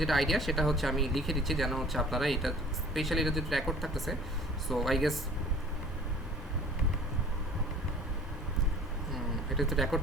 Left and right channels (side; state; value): both; normal; correlation 0.48